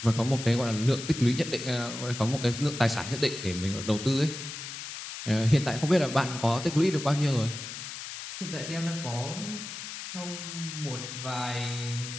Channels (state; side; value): noise; left; hiss, 9 dB below the sound